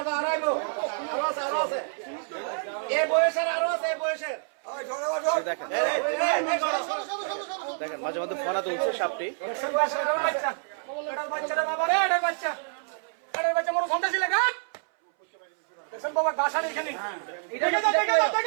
আরো আছে এই বয়সের, আরো আছে এই বয়সের। দেখেন দেখেন মাঝে মধ্যে ফনা তুলছে সাপটি। বাচ্চাটা বাবা রে, এটা বাচ্চা, এটা বাচ্চা মোর সন্ধ্যা ছিল গা। দেখেন বাবা গাছা এখানে, দেখে দাও দেখে দাও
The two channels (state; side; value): silent; left; 60 dB below the other